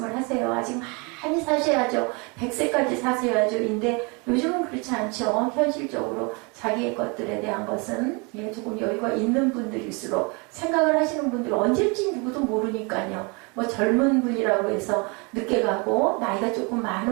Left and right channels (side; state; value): left; quieter; 31.0 dB